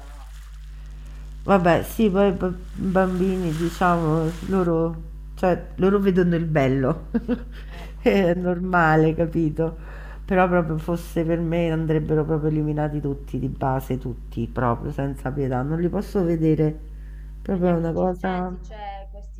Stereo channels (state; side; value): identical; both; correlation 1.00